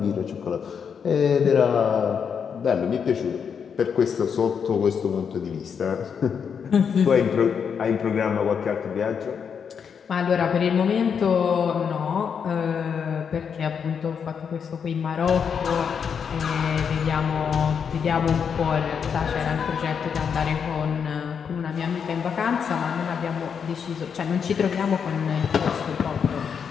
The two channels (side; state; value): right; quieter; 6.9 dB